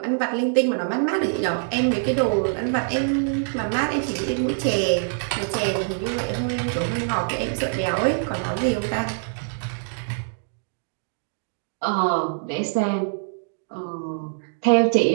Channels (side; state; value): left; silent; digital silence